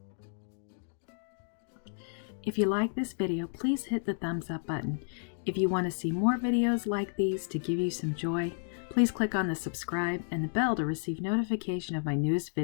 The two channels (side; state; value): right; silent; digital silence